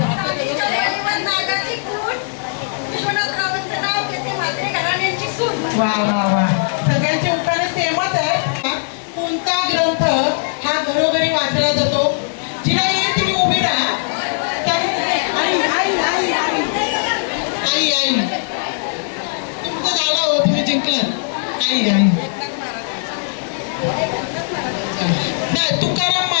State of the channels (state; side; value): silent; right; digital silence